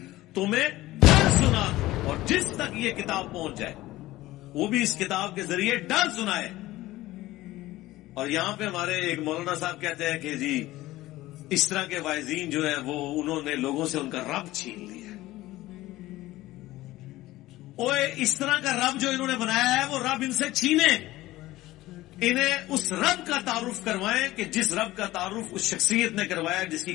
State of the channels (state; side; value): quieter; right; 17.1 dB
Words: تمہیں ڈر سنا دوں، اور جس تک یہ کتاب پہنچ جائے وہ بھی اس کتاب کے ذریعے ڈر سنائے. اور یہاں پہ ہمارے ایک مولانا صاحب کہتے ہیں کہ جی اس طرح کے واعظین جو ہیں وہ انہوں نے لوگوں سے ان کا رب چھین لیا. اوے اس طرح کا رب جو انہوں نے بنایا ہے وہ رب ان سے چھینے. انہیں اس رب کا تعارف کروائیں کہ جس رب کا تعارف اس شخصیت نے کروایا جس کی